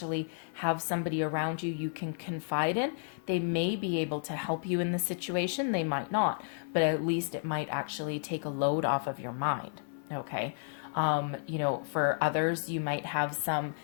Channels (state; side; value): silent; right; 56 dB below the other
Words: have somebody around you can confide in. They may be able to help you in the situation, they might not, but at least it might actually take a load off of your mind. Okay. For others, you might have some